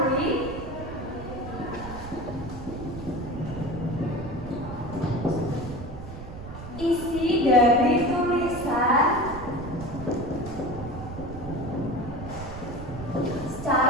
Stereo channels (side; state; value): right; noise; rumble, 10 dB below the sound